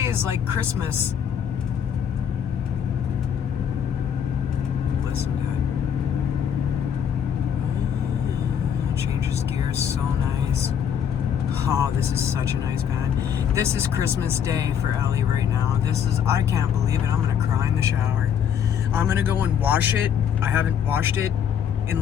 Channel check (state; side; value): quieter; right; 8.3 dB